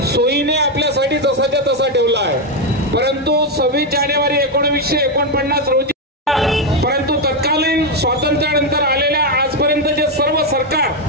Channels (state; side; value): normal; both; correlation 0.05